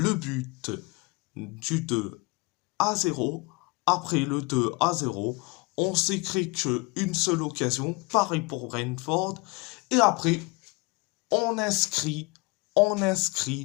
but du 2-0. Après le 2-0, on s'est créé qu'une seule occasion, pareil pour Brentford. Et après, on inscrit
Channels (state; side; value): quieter; right; 27.1 dB